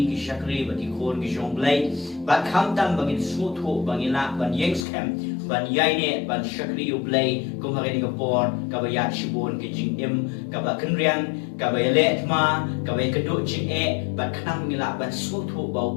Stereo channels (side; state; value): right; drops out; at 4.9 s